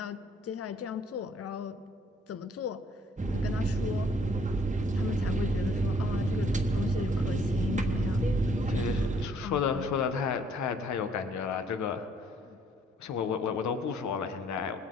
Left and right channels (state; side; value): normal; both; correlation 0.63